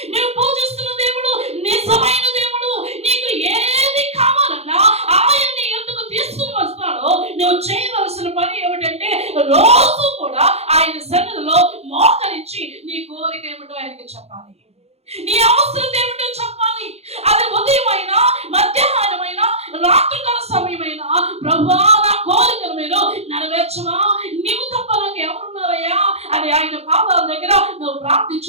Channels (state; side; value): late; left; 0.30 ms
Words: నువ్వు పూజిస్తున్న దేవుడు నిజమైన దేవుడు. నీకు ఏది కావాలన్నా ఆయన్ని ఎందుకు తీసుకుని వస్తాడో నువ్వు చేయవలసిన పని ఏమిటంటే రోజు కూడా ఆయన సన్నిధిలో మోకరించి నీ కోరిక ఏమిటో ఆయనకి చెప్పాలి, నీ అవసరం ఏమిటో చెప్పాలి. అది ఉదయమైనా, మధ్యాహ్నమైనా, రాత్రికాల సమయమైనా, ప్రభువా నా కోరికను మీరు నెరవేర్చవా, నీవు తప్ప నాకు ఎవరున్నారయ్యా అని ఆయన పాదాల దగ్గర నువ్వు